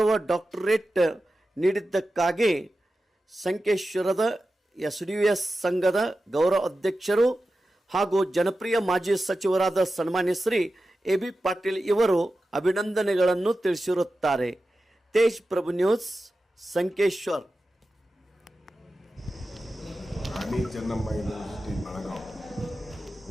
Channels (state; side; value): normal; both; correlation 0.93